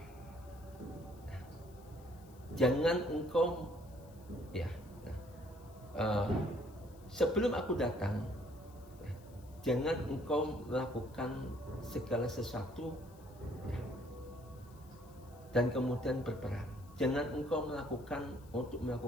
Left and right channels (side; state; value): left; noise; hiss, 26 dB below the sound